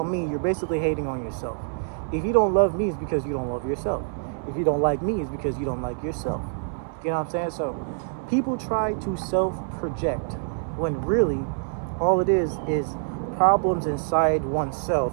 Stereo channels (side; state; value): left; silent; digital silence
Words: me, you're basically hating on yourself. If you don't love me, it's because you don't love yourself. If you don't like me, it's because you don't like yourself. You know what I'm saying? So people try to self-project when really all it is problems inside